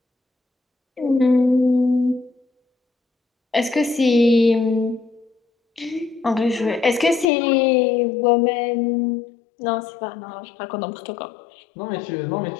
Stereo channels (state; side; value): drops out; right; at 7.3 s